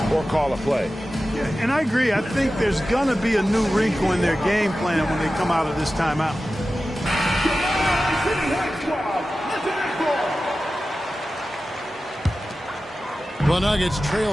or call a play. Yeah, and I agree. I think there's going to be a new wrinkle in their game plan when they come out of this timeout. The Nuggets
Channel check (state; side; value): normal; both; correlation 0.94